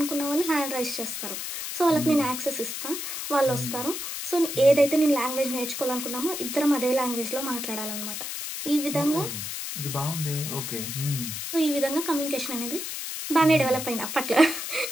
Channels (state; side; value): noise; left; hiss, 5 dB below the sound